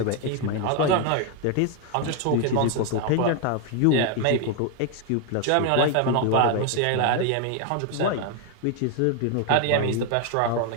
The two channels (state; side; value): different; both; correlation 0.00